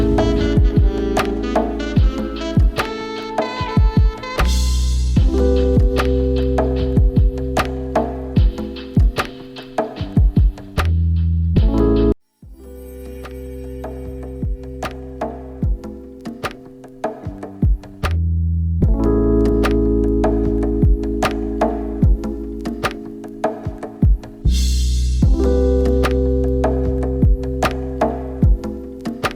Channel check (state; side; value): identical; both; correlation 1.00